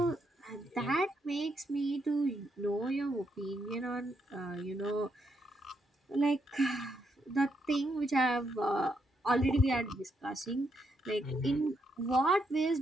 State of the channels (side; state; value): both; normal; correlation 0.79